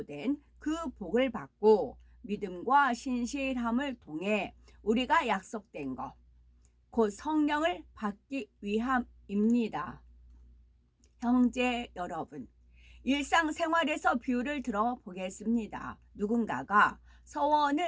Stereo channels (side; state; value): both; identical; correlation 1.00